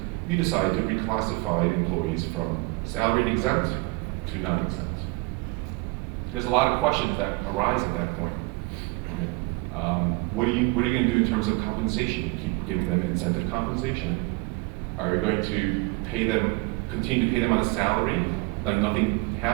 you decide to reclassify employees from salaried exempt to non-exempt. There's a lot of questions that arise at that point. Right? What are you going to do in terms of compensation? You keep giving them incentive compensation? Are you going to continue to pay them on a salary, like nothing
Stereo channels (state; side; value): quieter; left; 26.1 dB